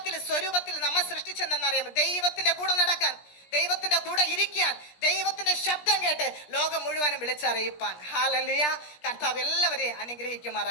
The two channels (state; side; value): late; right; 17 ms